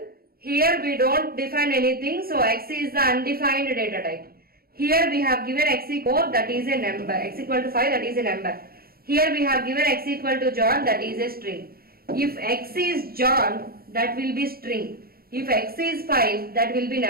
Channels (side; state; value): left; late; 0.44 ms